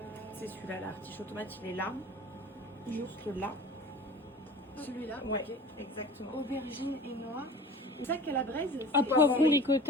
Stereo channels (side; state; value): both; normal; correlation 0.40